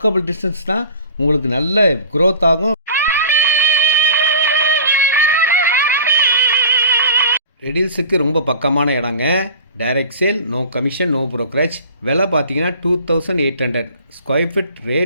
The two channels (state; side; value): inverted; both; correlation -0.41